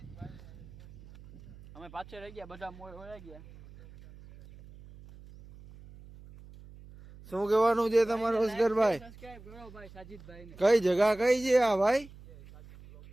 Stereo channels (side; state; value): right; noise; hum, 19 dB below the sound